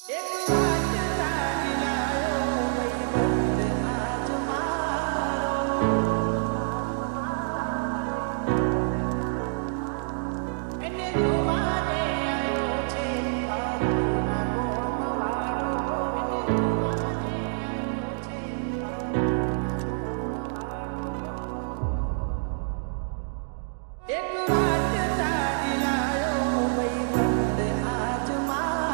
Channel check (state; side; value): silent; left; digital silence